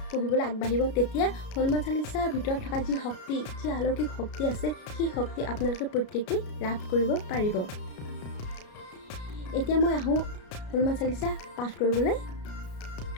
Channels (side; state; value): right; late; 33 ms